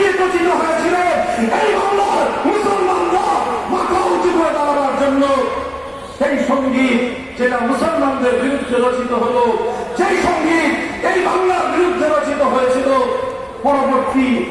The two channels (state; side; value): identical; both; correlation 1.00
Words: রচিত হয়েছিল এই বাংলার মুসলমানরা মাথা উঁচু করে দাঁড়াবার জন্য, সেই সঙ্গীত যেটা মুসলমানদের বিরুদ্ধে রচিত হলো, সেই সঙ্গীত এই বাংলার বিরুদ্ধে রচিত হয়েছিল, পরবর্তী